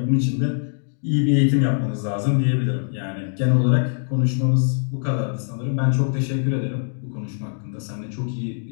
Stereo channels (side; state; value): right; silent; digital silence